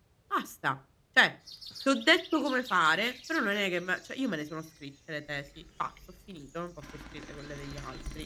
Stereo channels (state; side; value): identical; both; correlation 1.00